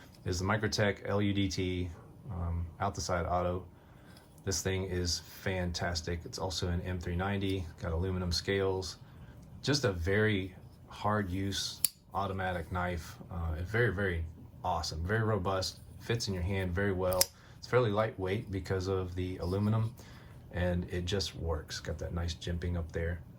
Is the Microtech LUDT out the side auto. This thing is fantastic. It's also an M390, got aluminum scales. Just a very hard use automatic knife. It's very, very awesome, very robust, fits in your hand very well. It's fairly lightweight because of the aluminum, and it just works. Got that nice jimping up there.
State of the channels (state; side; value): identical; both; correlation 1.00